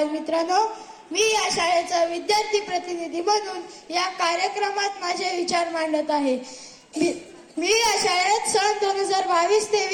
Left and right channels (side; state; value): both; identical; correlation 1.00